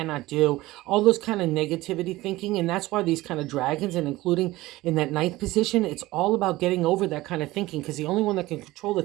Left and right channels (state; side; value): quieter; left; 18.4 dB